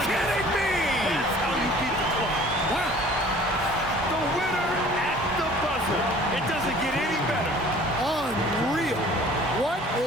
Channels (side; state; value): both; normal; correlation 0.50